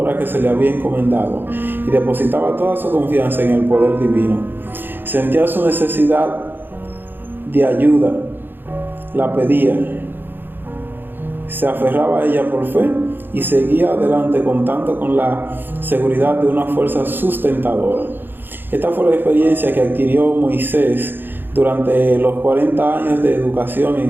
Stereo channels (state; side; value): late; left; 0.096 ms